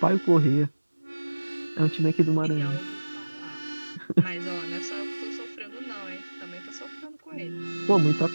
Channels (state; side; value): inverted; both; correlation -1.00